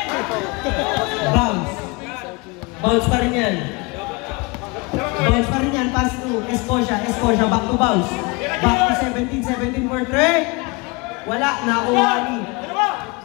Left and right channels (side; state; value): right; quieter; 27.5 dB